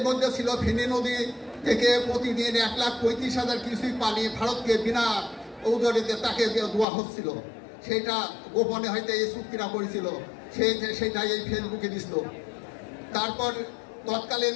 মধ্যে ছিল ফেনী নদী থেকে প্রতিদিন 1,35,000 কিউসেক পানি ভারতকে বিনা ঔজরিতে তাকে দেওয়া হচ্ছিল। সেটা গোপনে হয়তো এই চুক্তিটা করেছিল, সেইটাই এই ফেসবুকে দিছিল। তারপর তৎকালীন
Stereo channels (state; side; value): drops out; right; at 6.9 s